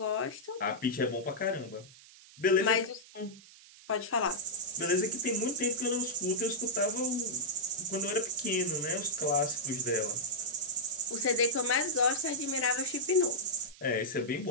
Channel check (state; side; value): noise; right; hiss, 21 dB below the sound